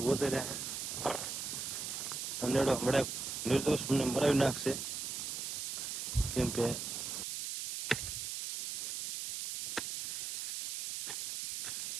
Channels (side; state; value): right; noise; hiss, 3 dB below the sound